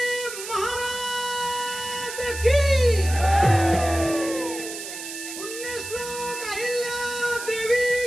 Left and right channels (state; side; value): noise; right; hiss, 9 dB below the sound